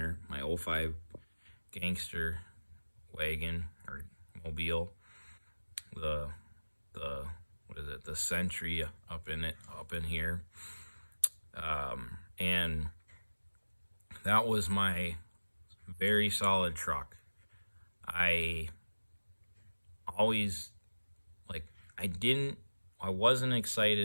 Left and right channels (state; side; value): inverted; both; correlation -1.00